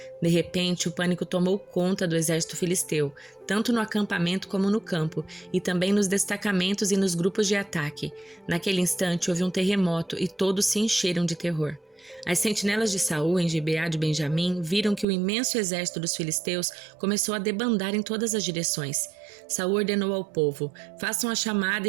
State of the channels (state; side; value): drops out; left; at 15.1 s